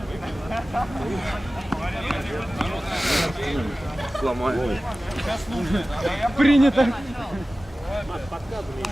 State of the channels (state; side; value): normal; both; correlation 0.96